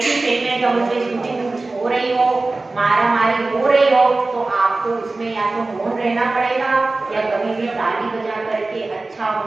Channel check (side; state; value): left; quieter; 3.3 dB